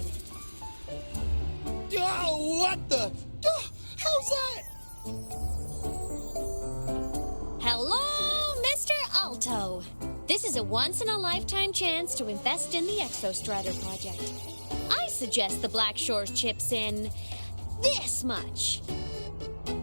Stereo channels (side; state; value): both; inverted; correlation -1.00